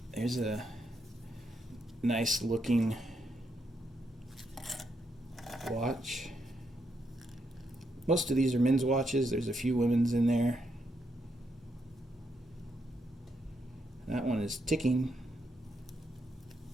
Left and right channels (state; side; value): normal; both; correlation 0.79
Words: There's a nice looking watch. Most of these are men's watches. There's a few women's in there. That one is ticking.